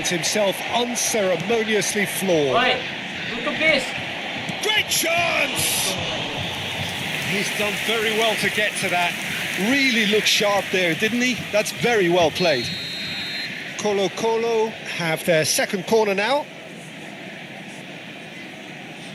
himself unceremoniously floored. Oi, tutup, guys. Great chance! He's done very well to get to that. Really looked sharp there, didn't he? That's very well played. Colo have their second corner now.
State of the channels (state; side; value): identical; both; correlation 1.00